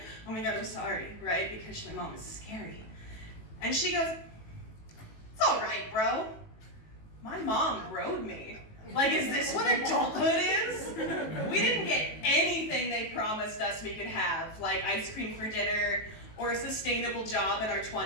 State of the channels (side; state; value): right; late; 18 ms